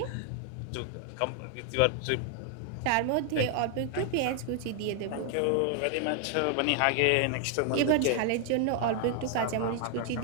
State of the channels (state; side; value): different; both; correlation 0.00